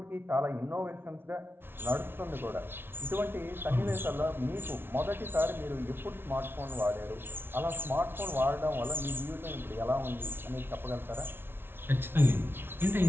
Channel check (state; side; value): late; left; 0.11 ms